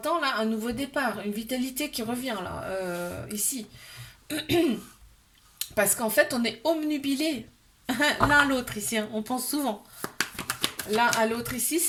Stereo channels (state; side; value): identical; both; correlation 1.00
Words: là, un nouveau départ, une vitalité qui revient, là, ici. Parce qu'en fait, on est omnubilés l'un à l'autre ici, hein, on pense souvent. L'un à l'autre ici,